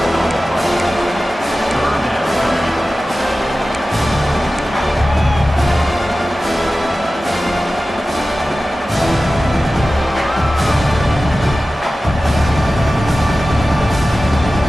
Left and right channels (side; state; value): both; normal; correlation 0.95